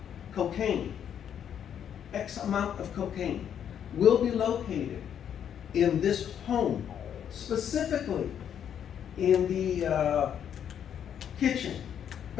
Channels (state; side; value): quieter; right; 9.0 dB